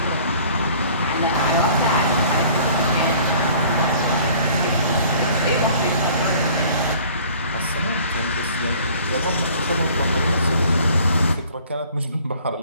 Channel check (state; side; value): inverted; both; correlation -0.52